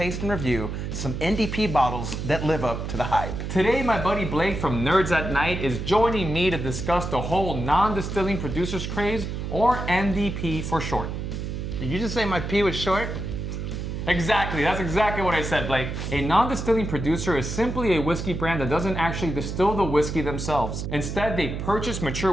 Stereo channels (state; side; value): noise; right; hum, 5 dB below the sound